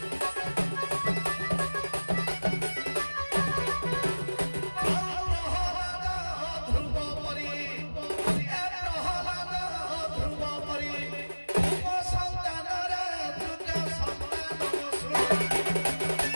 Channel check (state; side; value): inverted; both; correlation -1.00